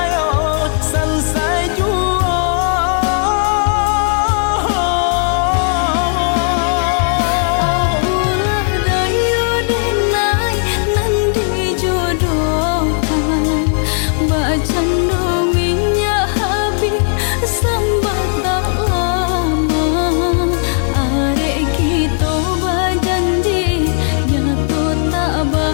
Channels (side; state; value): right; silent; 64 dB below the other